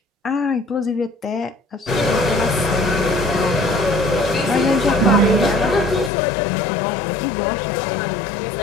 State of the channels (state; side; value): drops out; right; at 6.1 s